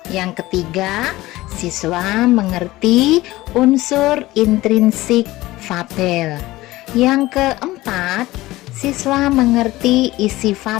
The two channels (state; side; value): quieter; right; 18.1 dB